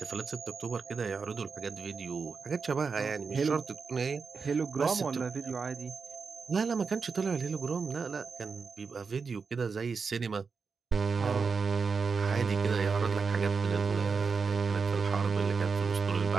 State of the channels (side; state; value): left; quieter; 5.1 dB